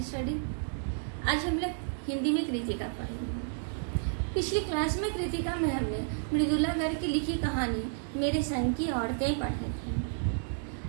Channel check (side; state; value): left; silent; 57 dB below the other